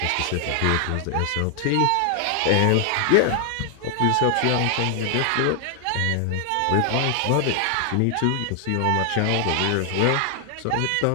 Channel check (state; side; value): different; both; correlation 0.00